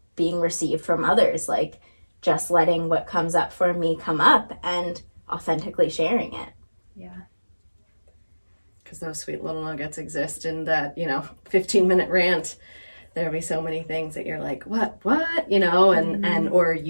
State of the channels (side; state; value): both; inverted; correlation -1.00